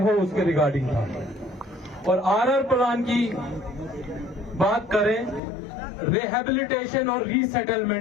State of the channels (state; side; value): drops out; right; at 5.4 s